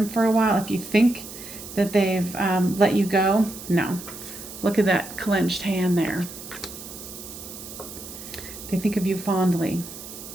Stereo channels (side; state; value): right; noise; hiss, 13 dB below the sound